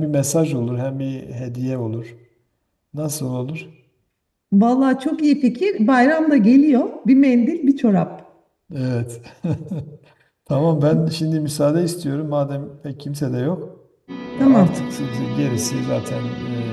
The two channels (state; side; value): identical; both; correlation 1.00